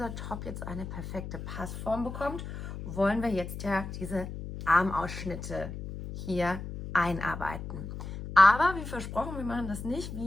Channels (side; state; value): left; noise; hum, 8 dB below the sound